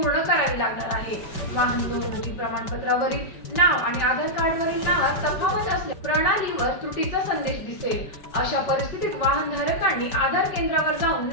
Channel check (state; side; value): late; right; 5.2 ms